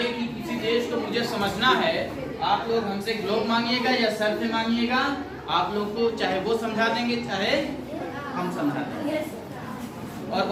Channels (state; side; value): identical; both; correlation 1.00